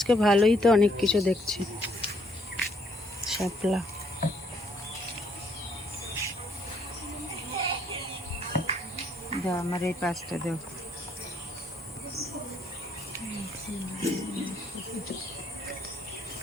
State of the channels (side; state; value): both; normal; correlation 0.68